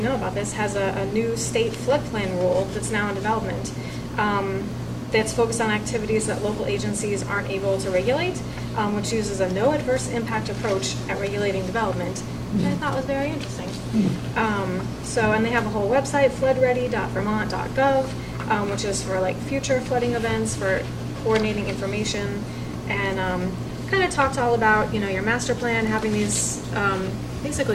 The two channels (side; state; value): both; identical; correlation 1.00